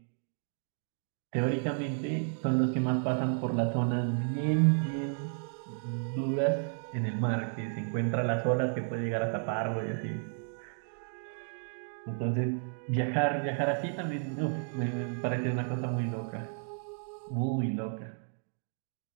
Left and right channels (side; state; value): left; silent; 56 dB below the other